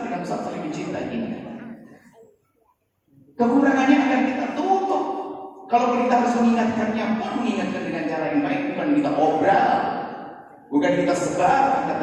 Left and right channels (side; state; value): both; identical; correlation 1.00